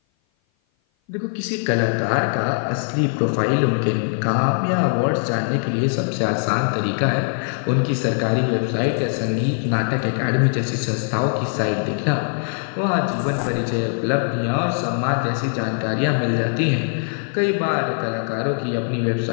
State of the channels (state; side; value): silent; right; 56 dB below the other